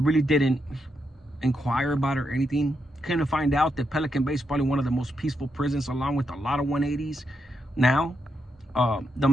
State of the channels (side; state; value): both; normal; correlation 0.82